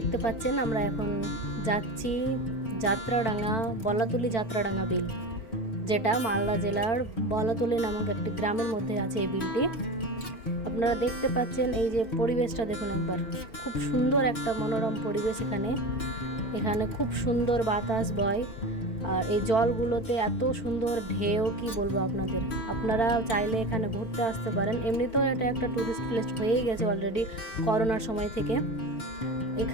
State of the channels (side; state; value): right; late; 4.5 ms